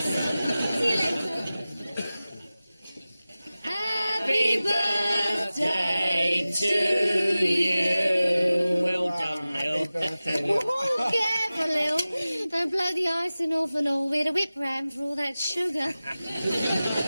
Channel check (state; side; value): inverted; both; correlation -0.96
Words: See you later. Happy birthday to you. Well done, Lil. Oh, careful, Lil. Don't blow the icing off and all. We had a whip round for all that sugar.